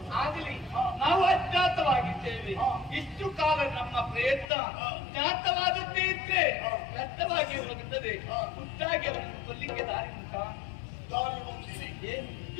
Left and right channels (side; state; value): right; drops out; at 4.5 s